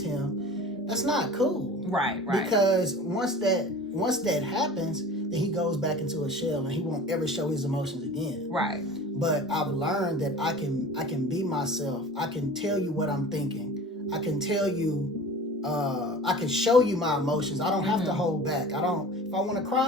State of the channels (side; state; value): both; normal; correlation 0.40